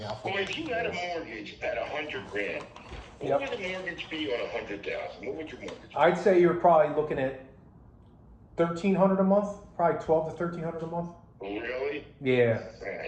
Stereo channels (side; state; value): both; identical; correlation 1.00